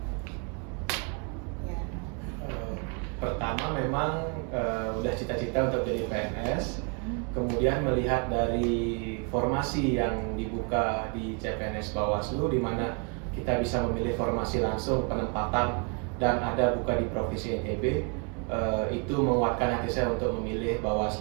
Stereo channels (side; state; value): left; quieter; 35.4 dB